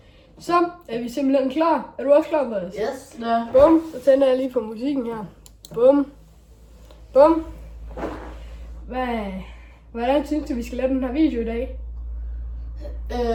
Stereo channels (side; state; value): both; identical; correlation 1.00